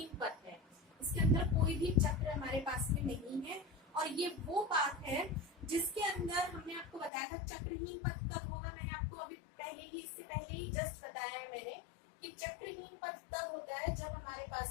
पथ है। इसके अंदर कोई भी चक्र हमारे पास में नहीं है। और ये वो पाथ है जिसके अंदर हमने आपको बताया था चक्रहीन पथ तब होगा। मैंने आपको अभी इससे पहले ही जस्ट बताया है मैंने कि चक्रहीन पथ तब होता है जब हमारे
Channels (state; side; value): drops out; right; at 7.1 s